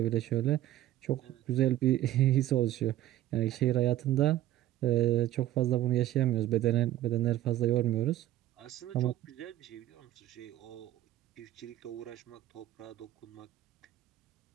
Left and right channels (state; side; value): quieter; left; 14.1 dB